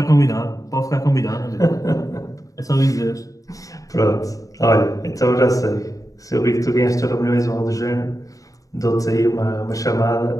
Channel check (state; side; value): late; right; 0.16 ms